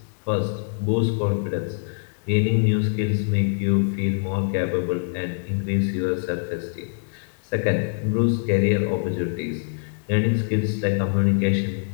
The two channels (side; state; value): right; silent; 63 dB below the other